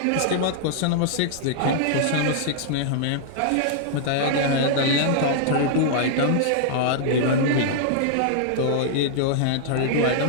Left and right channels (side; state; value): both; different; correlation -0.01